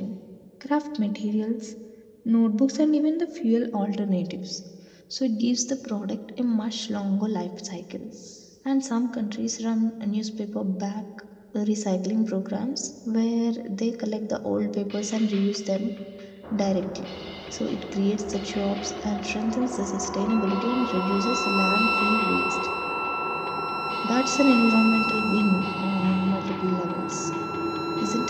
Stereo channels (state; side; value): identical; both; correlation 1.00